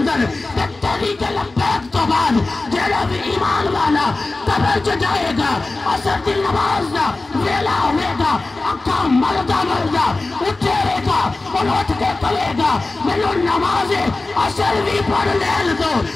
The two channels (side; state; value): right; quieter; 3.2 dB